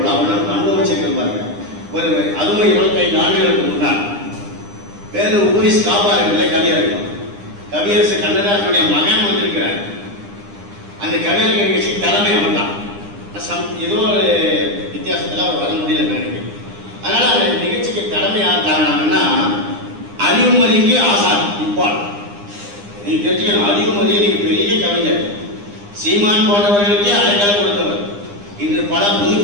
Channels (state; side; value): late; left; 9.9 ms